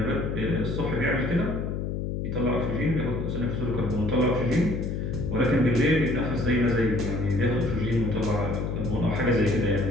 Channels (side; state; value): left; noise; hum, 2 dB below the sound